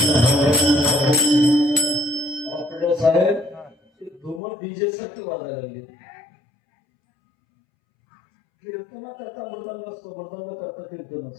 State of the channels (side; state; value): right; drops out; at 4.4 s